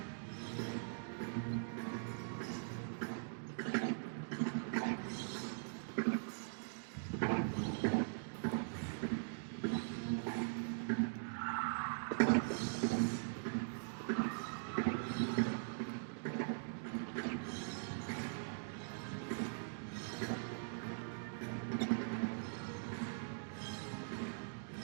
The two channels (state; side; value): silent; left; digital silence